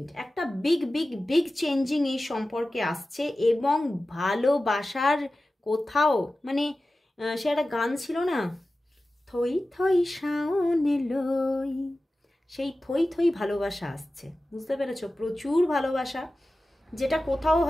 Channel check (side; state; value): both; normal; correlation 0.95